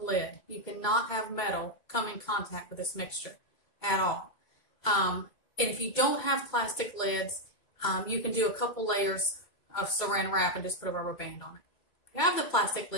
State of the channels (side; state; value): right; late; 2.3 ms